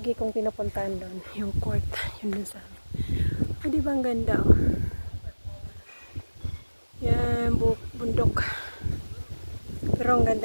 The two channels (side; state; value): both; inverted; correlation -1.00